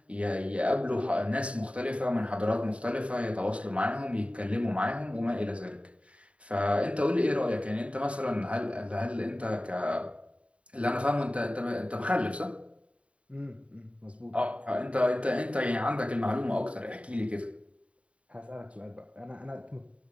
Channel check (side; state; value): left; late; 0.063 ms